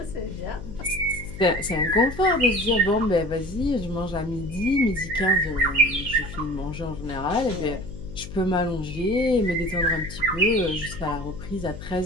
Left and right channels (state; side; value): noise; left; hum, 12 dB below the sound